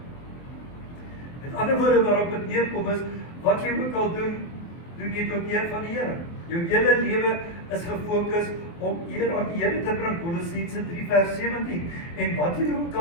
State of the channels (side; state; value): right; late; 24 ms